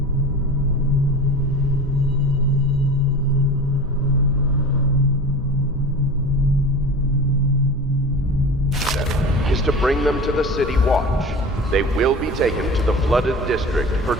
is to bring them to the City Watch. They will be taken to the flooded district for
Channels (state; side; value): normal; both; correlation 0.34